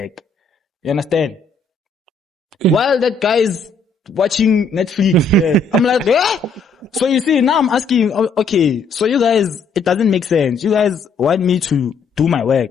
You understand? While that guy's watching Netflix. Yeah. I'm like, eh? So you see, now I'm asking, okay, so you guys, it doesn't make sense. You guys want me to do my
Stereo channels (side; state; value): right; quieter; 4.4 dB